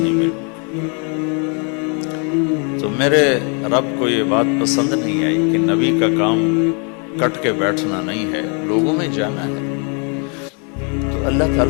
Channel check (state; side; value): quieter; right; 37.1 dB